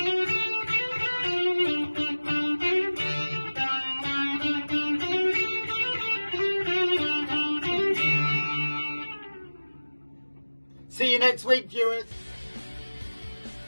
See you next week, viewers.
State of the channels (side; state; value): both; inverted; correlation -1.00